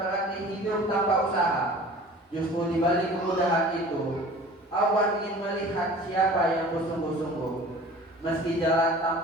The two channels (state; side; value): normal; both; correlation 0.43